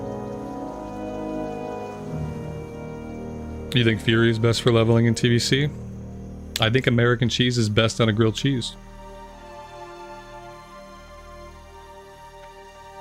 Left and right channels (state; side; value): identical; both; correlation 1.00